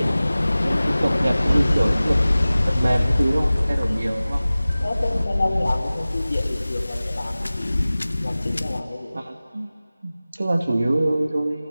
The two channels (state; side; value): inverted; both; correlation -0.97